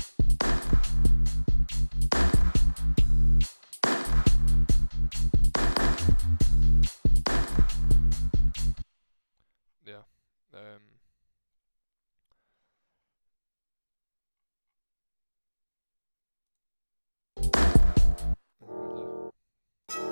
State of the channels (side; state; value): both; inverted; correlation -1.00